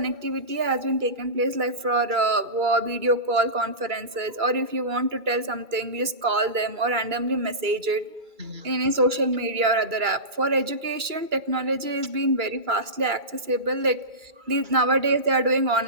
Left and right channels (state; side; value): late; left; 2.3 ms